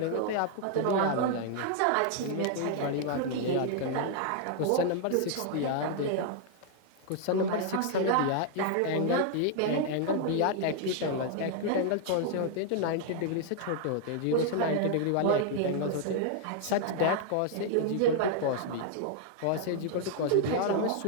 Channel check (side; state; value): both; different; correlation 0.00